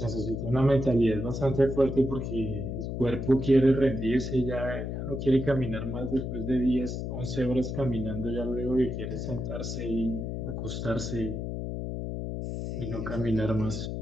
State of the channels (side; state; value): left; noise; hum, 4 dB below the sound